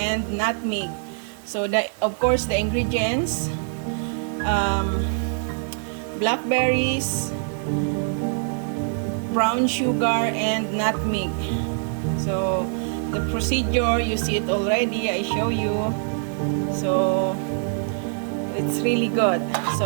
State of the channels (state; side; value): silent; left; 63 dB below the other